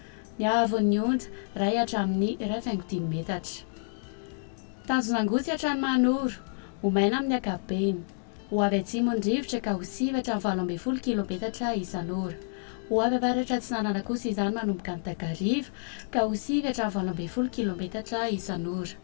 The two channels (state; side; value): silent; right; 58 dB below the other